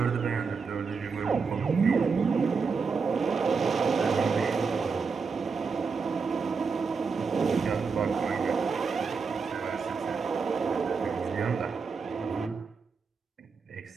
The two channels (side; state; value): left; quieter; 5.2 dB